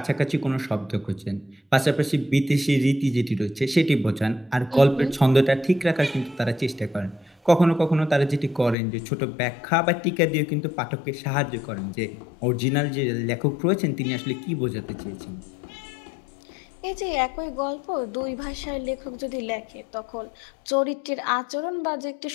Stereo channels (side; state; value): right; drops out; at 8.8 s